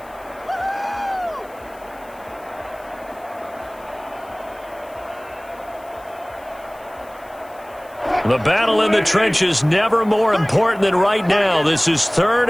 The battle in the trenches never more important than right now. This is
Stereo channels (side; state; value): left; noise; hiss, 27 dB below the sound